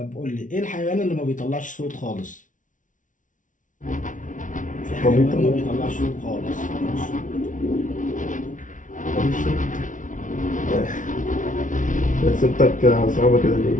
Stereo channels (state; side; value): late; right; 0.37 ms